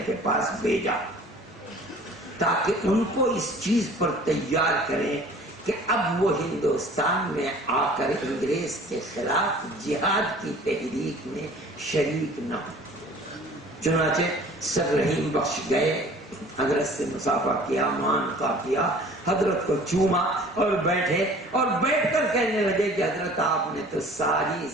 کے پاس بھیجا تاکہ ان کو اس چیز پر تیار کریں کہ اب وہ ہندوستان میں آ کر انگریز کے خلاف جہاد کی تحریک میں شریک نہ ہو۔ چنانچہ سر رحیم بخش گئے، حضرت سے مصافحہ کیا، معانقہ کیا، حضرت کو چوما اور بیٹھے، اور بیٹھ کر کہنے لگے کہ حضرت آپ نے تو ساری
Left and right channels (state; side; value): normal; both; correlation 0.48